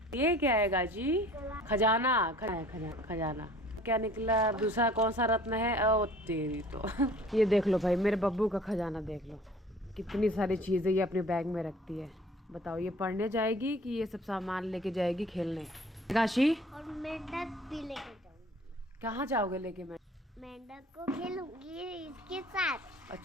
ये क्या है काशी? खजाना खजाना क्या निकला? दूसरा कौन सा रत्न है? ओ तेरी तो ये देख लो भाई, मेरे बब्बू का खजाना देख लो, कितनी सारी चीज़ें ये अपने बैग में रखती है। बताओ ये पढ़ने जाएगी कि ये सब सामान लेके जाएगी खेलने? काशी और मेंढक भी लेके जाऊंगी। कहाँ जाओगे लेके? मेंढक को खेलूंगी इसके साथ।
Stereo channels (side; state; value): both; normal; correlation 0.50